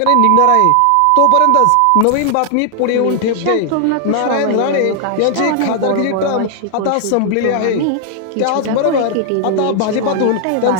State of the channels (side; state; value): both; different; correlation 0.00